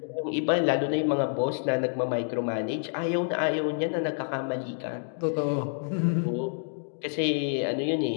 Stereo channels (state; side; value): silent; right; digital silence